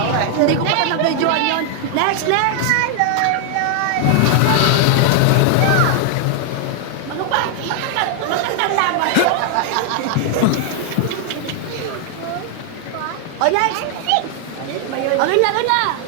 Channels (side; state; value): both; different; correlation 0.00